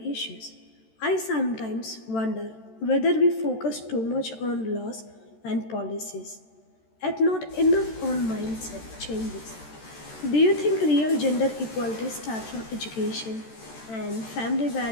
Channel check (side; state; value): right; late; 13 ms